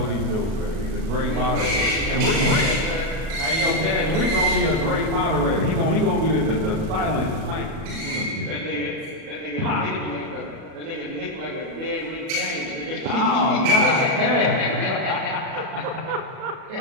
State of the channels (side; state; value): left; late; 37 ms